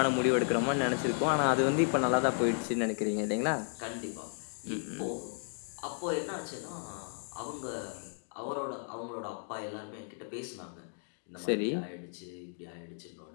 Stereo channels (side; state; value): right; silent; 55 dB below the other